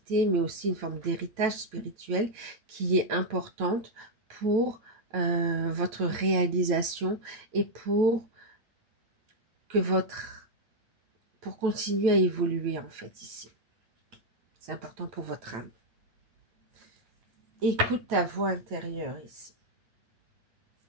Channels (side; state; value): left; late; 9.1 ms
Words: mais aussi une forme d'héritage spirituel qui est importante pour votre réalisation et pour que pour continuer à évoluer en fait ici. C'est important pour votre âme. Écoute ta voix intérieure ici.